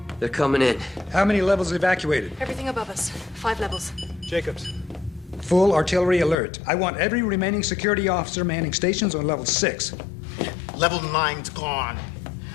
They're coming in. How many levels evacuated? Everything above us. 5 levels. Jacobs. Full artillery alert. I want every remaining security officer manning stations on level 6. Level 9's gone.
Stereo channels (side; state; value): right; drops out; at 6.4 s